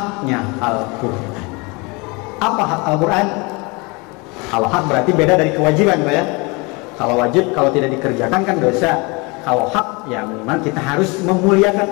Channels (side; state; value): right; quieter; 27.8 dB